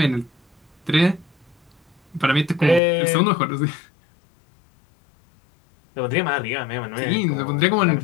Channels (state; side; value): drops out; right; at 2.8 s